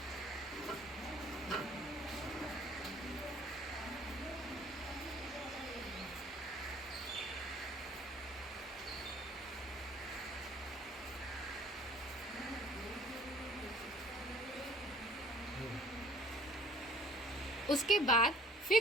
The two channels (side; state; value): both; normal; correlation 0.53